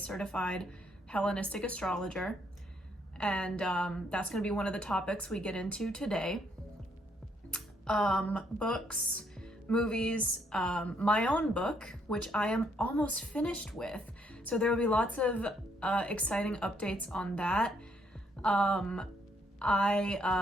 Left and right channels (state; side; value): normal; both; correlation 0.71